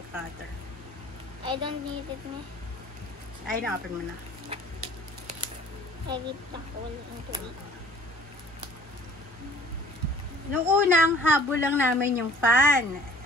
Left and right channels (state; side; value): normal; both; correlation 0.50